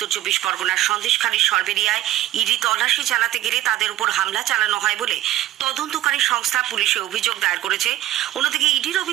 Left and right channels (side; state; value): left; quieter; 14.4 dB